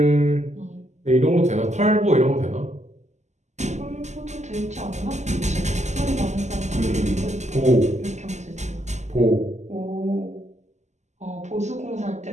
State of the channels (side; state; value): left; late; 0.33 ms